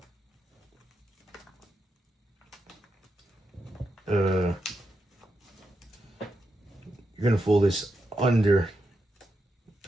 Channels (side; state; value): both; normal; correlation 0.86